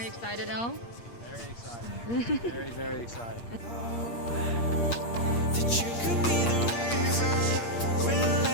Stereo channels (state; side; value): late; right; 8.6 ms